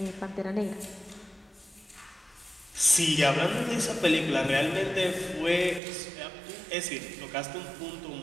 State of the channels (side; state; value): left; drops out; at 5.8 s